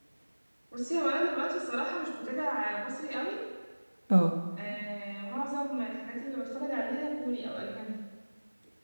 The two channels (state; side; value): inverted; both; correlation -1.00